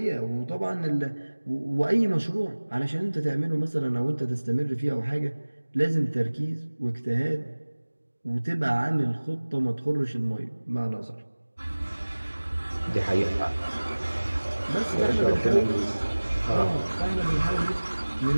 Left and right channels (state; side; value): inverted; both; correlation -1.00